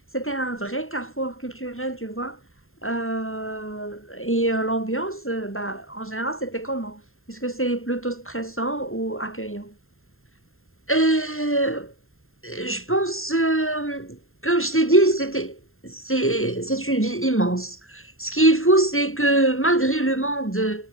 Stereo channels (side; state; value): right; late; 0.61 ms